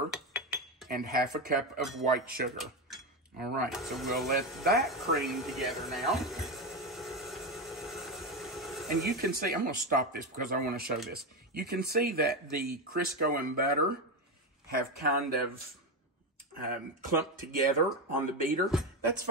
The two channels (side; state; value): both; normal; correlation 0.13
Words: and 1/2 cup of white sugar. All right, so we'll let that cream together now. And you can see, I'm going to stop this because I want to show this. You can see that the Crisco and butter have kind of clumped together on the beater. That's